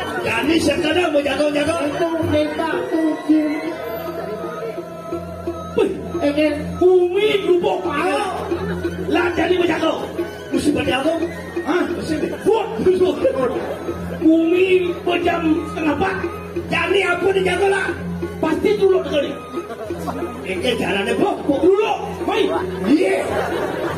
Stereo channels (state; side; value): identical; both; correlation 1.00